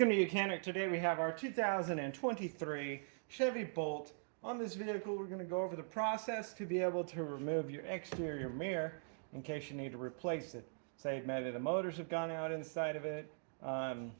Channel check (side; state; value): left; silent; digital silence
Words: to Mechanic. Today we have our 2023 Chevy Bolt. On this vehicle we're going to go over the process to be able to remove your exterior mirror in case you need to replace it. Say maybe the motors have gone out inside of it,